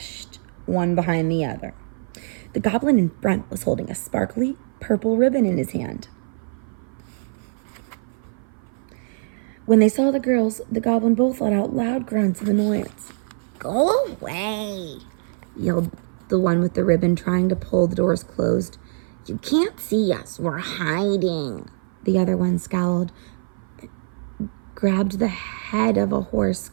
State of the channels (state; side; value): silent; left; 55 dB below the other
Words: one behind the other. The goblin in front was holding a sparkly purple ribbon in his hand. When they saw the girls, the goblin both let out loud grunts of annoyance. Go away, yelled the one with the ribbon, trying to pull the doors closed. You can't see us. We're hiding. The other one scowled, grabbed the head of a horse